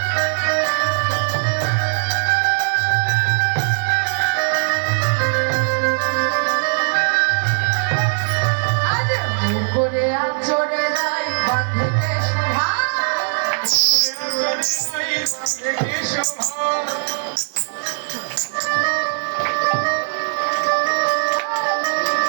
করে আচরে নাই বাঁধতে শোভা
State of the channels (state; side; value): silent; left; digital silence